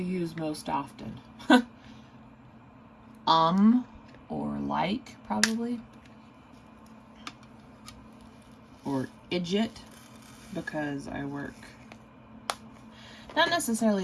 most often? Or like, probably. Or idjit, because I work, not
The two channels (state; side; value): identical; both; correlation 1.00